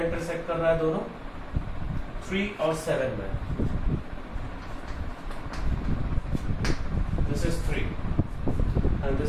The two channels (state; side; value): identical; both; correlation 1.00